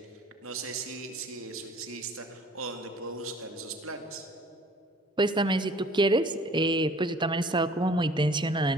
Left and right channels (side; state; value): both; normal; correlation 0.52